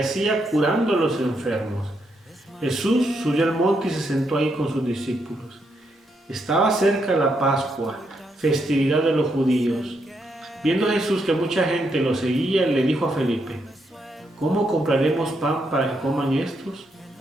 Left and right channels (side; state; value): both; normal; correlation 0.79